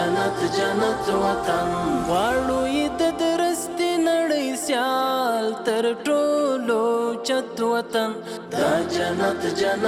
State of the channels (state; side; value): identical; both; correlation 1.00